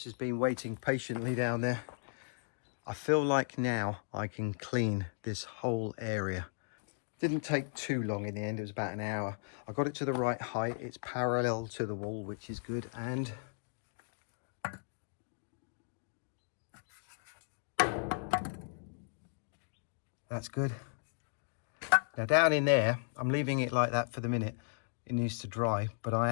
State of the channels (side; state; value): right; silent; digital silence